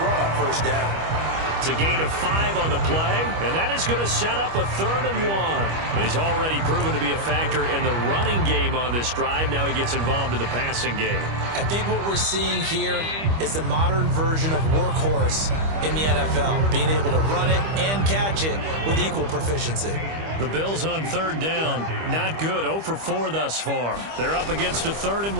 run on first down. It's a gain of 5 on the play, and that is going to set up a 3rd and 1. He's already proven to be a factor in the running game on this drive. Now he gets involved in the passing game. I think what we're seeing here is the modern version of workhorse in the NFL, being able to run it and catch it with equal proficiency. The Bills on third down, not good, 0 for 4 thus far. They're up against a 3rd and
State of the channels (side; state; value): left; late; 25 ms